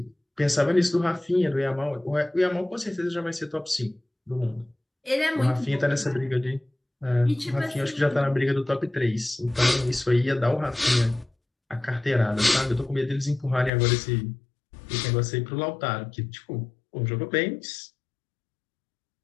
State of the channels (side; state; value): right; drops out; at 13.7 s